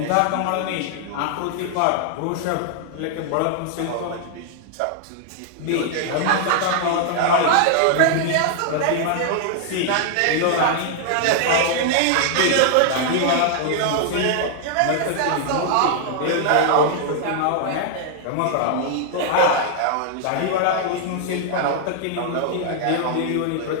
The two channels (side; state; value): both; different; correlation -0.01